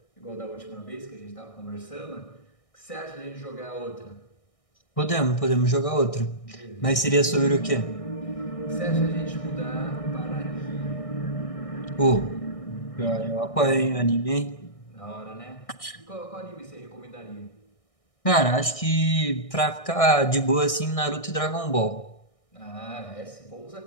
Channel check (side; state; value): right; late; 1.6 ms